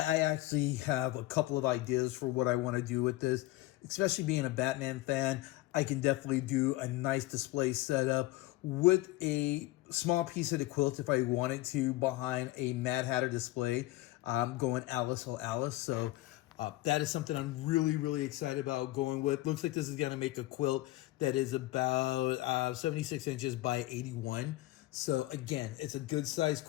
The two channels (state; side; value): quieter; right; 17.9 dB